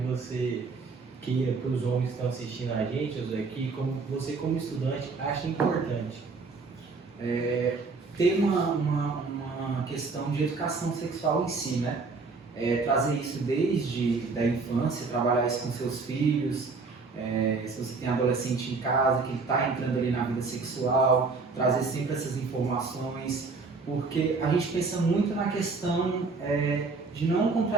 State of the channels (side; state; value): left; quieter; 4.2 dB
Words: você queira para os homens que estão assistindo a gente, José, que você como estudante acha importante. Tem uma questão de educação sexual em si, né? Trazer isso desde da infância, trabalhar isso com seus filhos, se você tem adolescente em casa que está entrando ali na vida sexual, trazer sempre essas informações, porque a gente pensa muito na questão de não